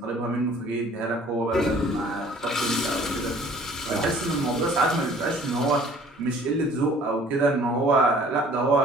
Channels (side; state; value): both; normal; correlation 0.53